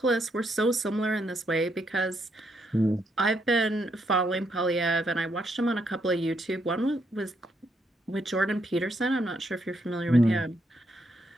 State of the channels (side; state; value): both; normal; correlation 0.76